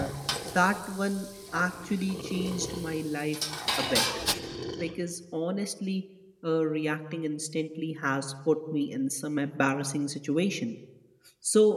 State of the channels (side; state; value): both; identical; correlation 1.00